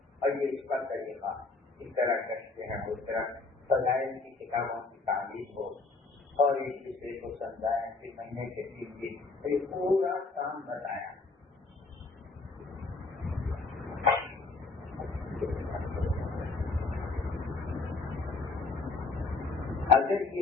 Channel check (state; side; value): quieter; right; 3.8 dB